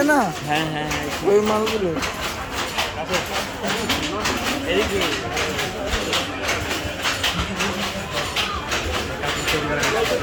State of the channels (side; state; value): both; identical; correlation 1.00